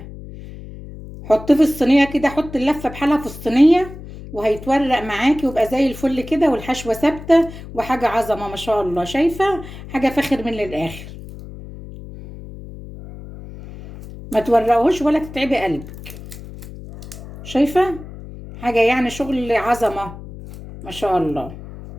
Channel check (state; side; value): noise; left; hum, 14 dB below the sound